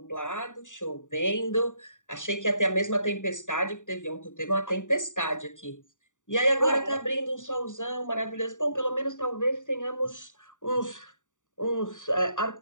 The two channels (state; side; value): late; right; 0.86 ms